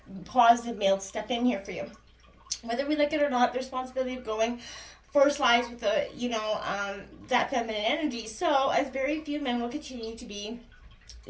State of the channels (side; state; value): both; identical; correlation 1.00